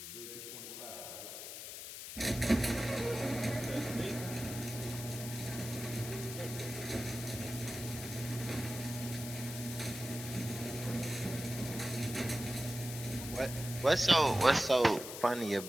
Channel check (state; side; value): noise; left; hiss, 9 dB below the sound